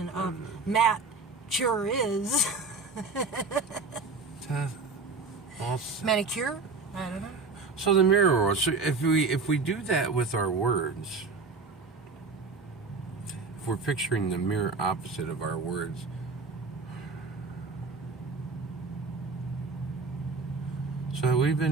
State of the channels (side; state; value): left; quieter; 4.1 dB